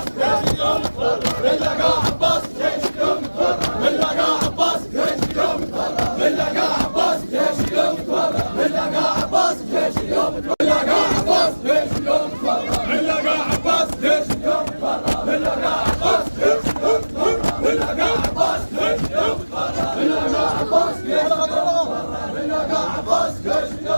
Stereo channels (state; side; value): inverted; both; correlation -1.00